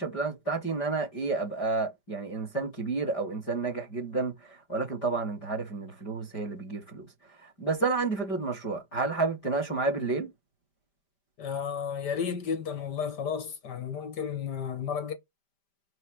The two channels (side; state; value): right; late; 5.1 ms